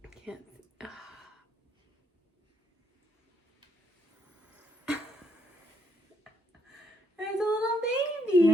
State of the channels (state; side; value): normal; both; correlation 0.74